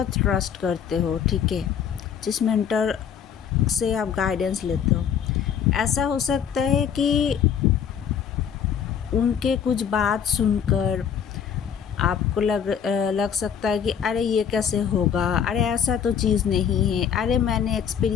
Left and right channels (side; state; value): right; quieter; 8.0 dB